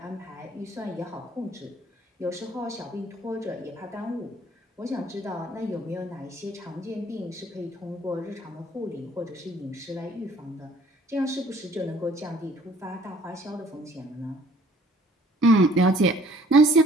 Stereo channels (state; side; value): normal; both; correlation 0.57